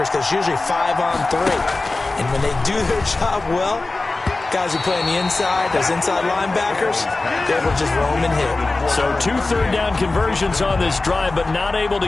because it's usually 5-on-3. And when they do their job well, Guys who play on the inside, those inside linebackers, they will just roam and hit. So 2 third-down conversions on this drive, but not able to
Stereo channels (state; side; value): quieter; right; 3.3 dB